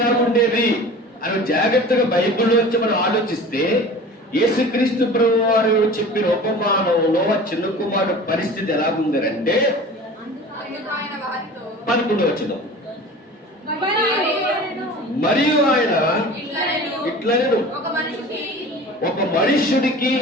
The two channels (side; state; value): both; normal; correlation 0.39